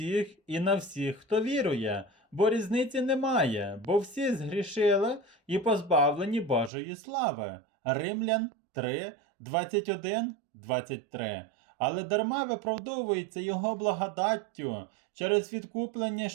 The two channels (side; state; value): left; drops out; at 6.7 s